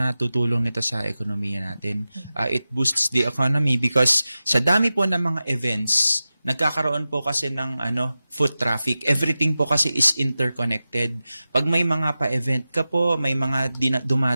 natutulong nito sa ekonomiya natin. It boosts the economy because sa dami po ng mga events, nagkakaroon po kasi ng foot traffic. Everything po kasi is interconnected. Pag may mga pa-event ka po, may mga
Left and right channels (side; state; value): both; inverted; correlation -0.94